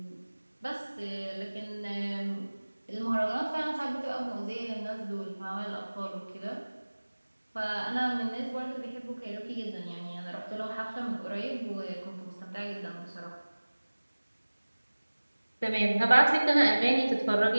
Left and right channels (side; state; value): both; inverted; correlation -1.00